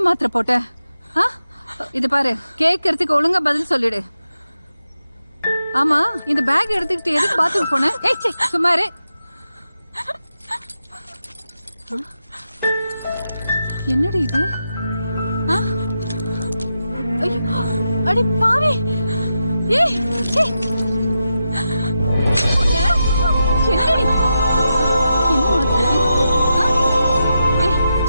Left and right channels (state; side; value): inverted; both; correlation -0.88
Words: மாத்திரை போட்ட? இது பாரு, கேட்கறதுக்கு ஒழுங்கா பதில் சொல்லிடு. ஆமா, இந்த பேக் எடுத்துக்கிட்டு எதுக்கு பாத்ரூம் போன? ஏய், சும்மாரு. என்னடி இது? அடி பாவி. ஏய், என்னடி?